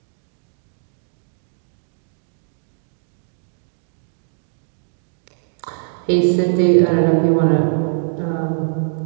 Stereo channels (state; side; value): silent; left; digital silence